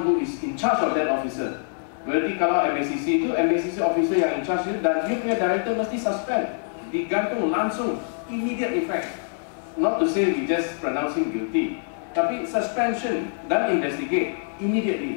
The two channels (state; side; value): silent; right; 62 dB below the other